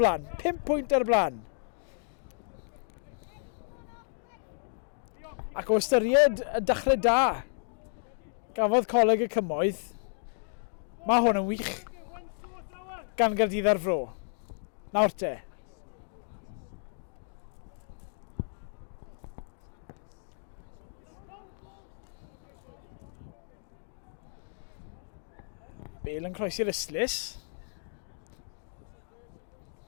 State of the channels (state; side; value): silent; right; digital silence